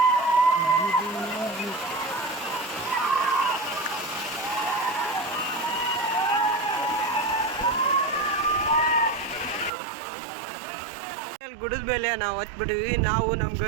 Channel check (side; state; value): left; drops out; at 9.7 s